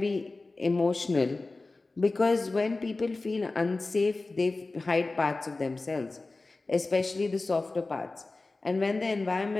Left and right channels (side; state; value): right; quieter; 3.3 dB